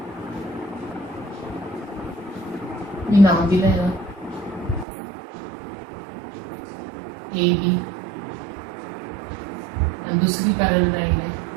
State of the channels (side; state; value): left; drops out; at 4.9 s